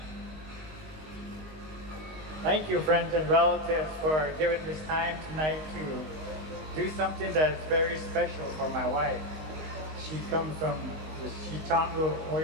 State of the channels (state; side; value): late; left; 19 ms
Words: Thank you, friends and relatives, for giving this time tonight to do something that is very special for my wife. She comes from the Chitango